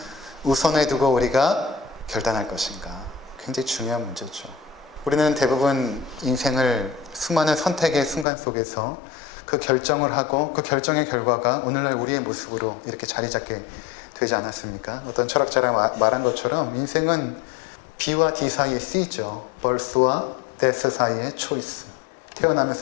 우선에 두고 우리가 결단할 것인가. 굉장히 중요한 문제죠. 우리는 대부분 인생을 수많은 선택의 순간 속에서 그 결정을 하고 그 결정의 결과가 오늘날 우리의 모습으로 이렇게 자리 잡게 되지 않았습니까? 어떤 철학자가 말한 것처럼 인생은 B와 D 사이의 C죠. birth와 death 사이의 choice.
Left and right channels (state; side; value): drops out; right; at 8.2 s